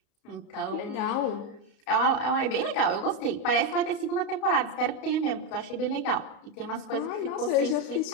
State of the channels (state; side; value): late; right; 31 ms